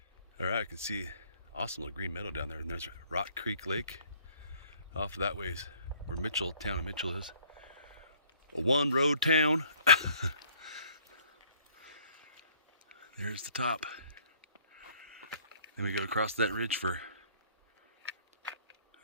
All right, I can see awesome little green meadow down there, and there's Rock Creek Lake Off that ways where town of Mitchell is. A one road town. There's the top. Then we go across that ridge for,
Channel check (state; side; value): inverted; both; correlation -0.59